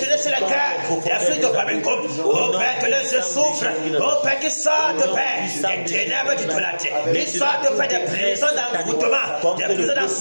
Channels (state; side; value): inverted; both; correlation -1.00